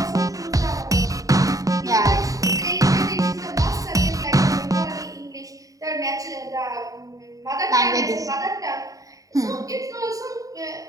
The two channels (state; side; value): late; left; 0.16 ms